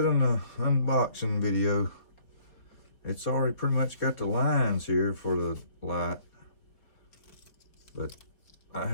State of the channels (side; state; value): right; late; 4.2 ms